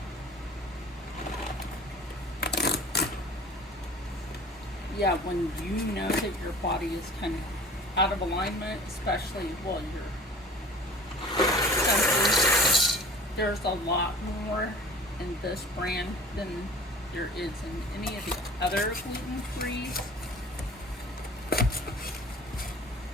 Yeah, when you know that your body is kind of out of alignment, especially while you're senses, there's a lot more in this brand than there is in any of the other gluten-free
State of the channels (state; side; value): normal; both; correlation 0.43